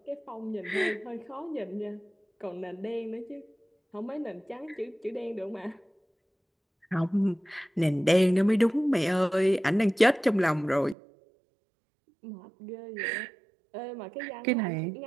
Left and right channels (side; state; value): left; drops out; at 11.0 s